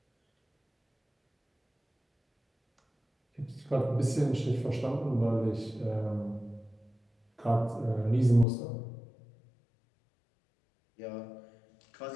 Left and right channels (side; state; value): right; drops out; at 8.5 s